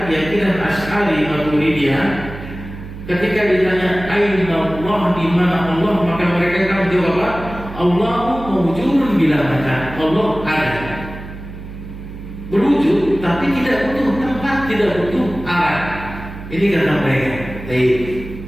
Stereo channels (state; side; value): noise; right; hum, 12 dB below the sound